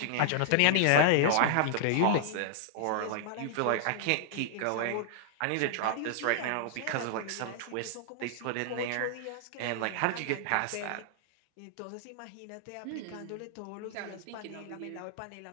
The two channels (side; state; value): both; different; correlation -0.01